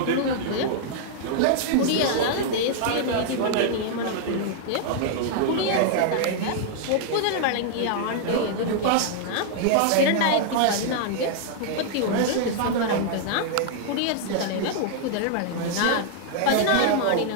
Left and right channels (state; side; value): different; both; correlation -0.01